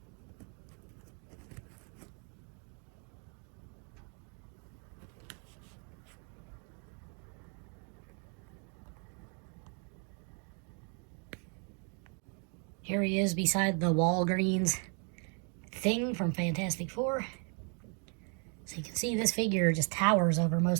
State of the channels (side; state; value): left; quieter; 39.6 dB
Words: Here he is beside the Walgreens thing from Fantastic Four. So you can see this figure just towers over